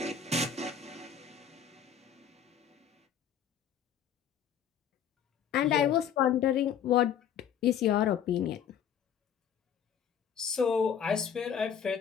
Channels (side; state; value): right; quieter; 8.3 dB